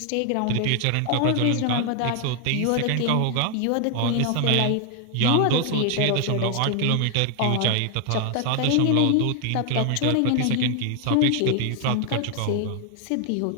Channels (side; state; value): both; different; correlation 0.00